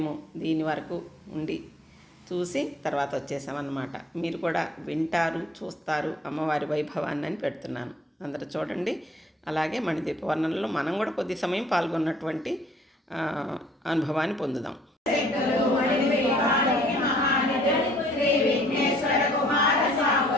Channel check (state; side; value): normal; both; correlation 0.58